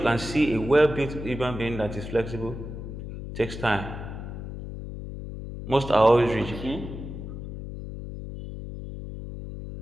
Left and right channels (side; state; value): left; noise; hum, 9 dB below the sound